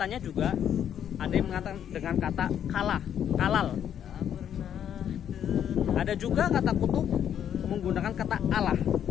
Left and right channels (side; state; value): right; quieter; 9.5 dB